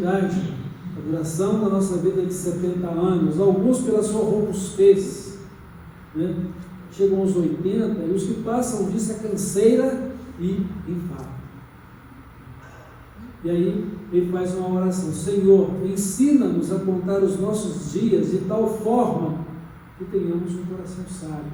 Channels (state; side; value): identical; both; correlation 1.00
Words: a duração da nossa vida é de 70 anos. Alguns, pela sua robustez, né? Chegam aos 80, e os que passam disso é canseira e enfado. E aí ele faz uma oração: Senhor, ensina-nos a contar os nossos dias de tal forma que tenhamos um coração